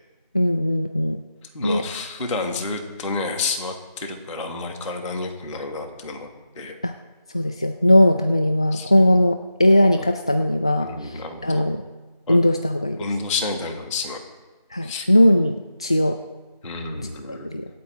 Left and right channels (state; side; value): inverted; both; correlation -0.90